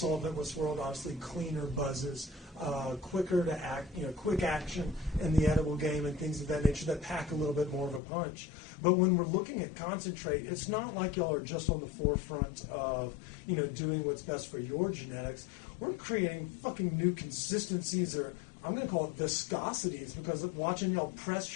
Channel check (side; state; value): right; drops out; at 8.0 s